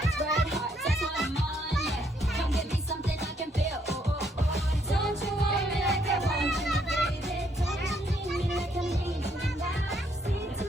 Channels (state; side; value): normal; both; correlation 0.71